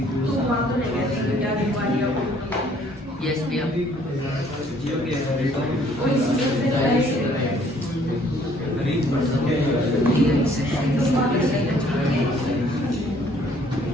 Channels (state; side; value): normal; both; correlation 0.60